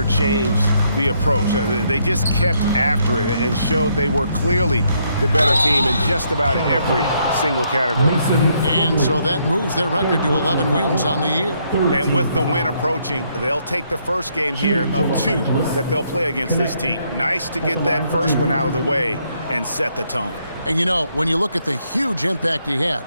changed the approach. They just kept after it and showed they were clearly the better team in just about every single category. And so that moves their record to 11 wins on the year. And with the win approaching, they'll take the first game here of 2 that they'll play against this team. Nice to get that first one out of the way and set the tone. And you know, when you look at the huge impact he had,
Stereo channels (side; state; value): both; inverted; correlation -0.73